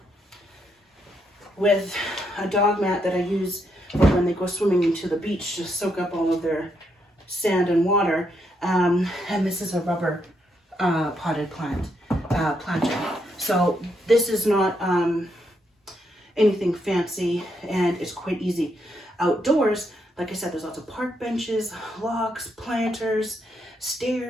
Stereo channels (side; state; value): both; normal; correlation 0.78